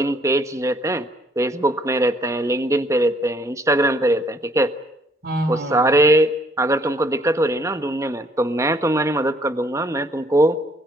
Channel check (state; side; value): normal; both; correlation 0.64